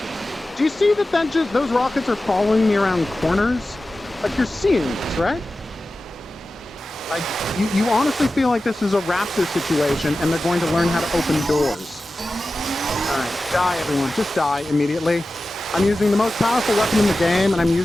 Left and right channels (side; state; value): both; normal; correlation 0.94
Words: Do you see that just those rockets are following me around corners? Like, you're seeing this, right? Like, you honestly feel like this is a raptor situation and they're going to learn how to open doors. Alright, die everyone. Just die immediately. I'm using the most powerful weapon in the game and I'm